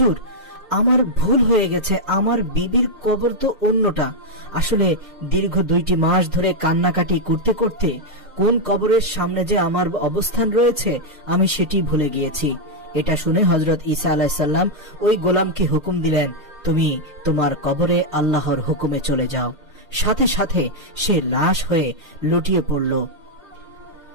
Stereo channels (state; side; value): normal; both; correlation -0.02